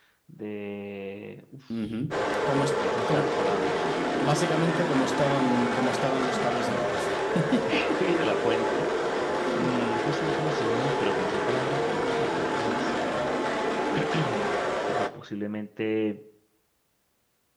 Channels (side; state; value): both; identical; correlation 1.00